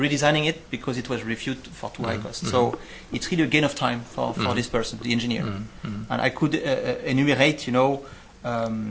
it because it was reviewed for too high cost. So it's really a gain of time for this person, the engineer. And I could enumerate,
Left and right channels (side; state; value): both; identical; correlation 1.00